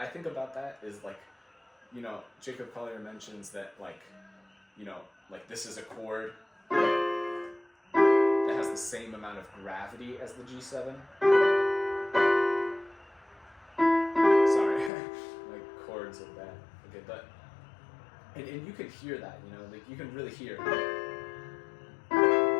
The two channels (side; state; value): right; drops out; at 14.9 s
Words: think about that is, like, you know, Jacob Collier mentions that, like, you know, like this is a chord that has the same amount of gravity as the G7. Sorry, like chords of that. Okay, but and you can hear that, you know, like you can really hear,